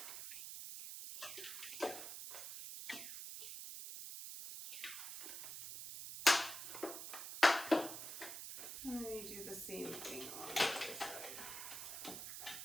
And then you do the same thing on the other side.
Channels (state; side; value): noise; right; hiss, 7 dB below the sound